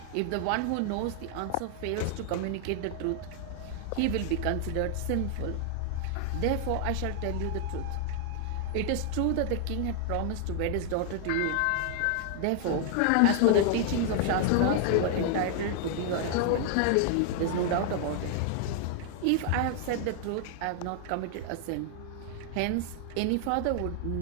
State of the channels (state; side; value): different; both; correlation 0.00